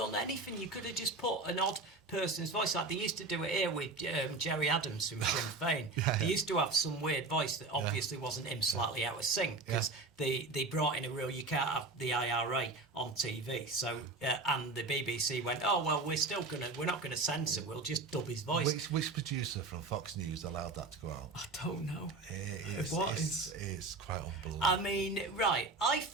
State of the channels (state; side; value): quieter; left; 3.5 dB